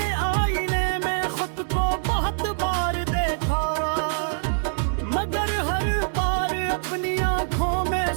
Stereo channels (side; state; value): left; silent; 60 dB below the other